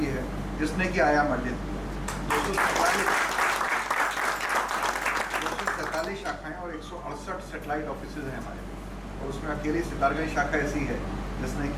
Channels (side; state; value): both; identical; correlation 1.00